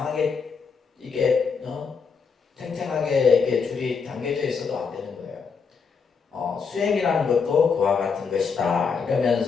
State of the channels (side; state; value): right; quieter; 5.6 dB